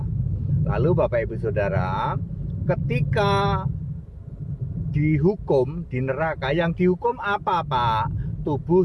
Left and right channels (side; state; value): both; identical; correlation 1.00